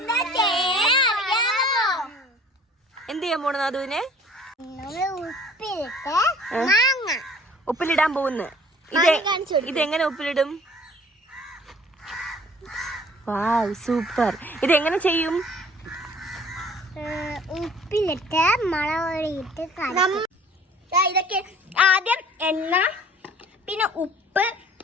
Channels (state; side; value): normal; both; correlation 0.52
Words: എന്ത് ചെയ്യാൻ പോണു നാദുവിനെ? ഉപ്പിലിടാൻ പോകുന്നു. ഇതെങ്ങനെ ഉപ്പിലിടും? വാവ്, സൂപ്പർ. ഇതെങ്ങനെ ചെയ്യും? ഉപ്പിലിട്ട് മുളകൊടിയിട്ട് ഇതൊക്കെ ആദ്യം എണ്ണ, പിന്നെ ഉപ്പ്,